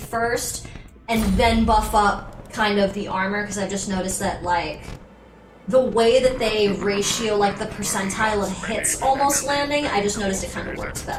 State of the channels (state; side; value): identical; both; correlation 1.00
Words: and then buff up kind of the armor, because I've just noticed that, like, the way that they ratio, like, the percentile of hits almost landing, I just noticed it kind of works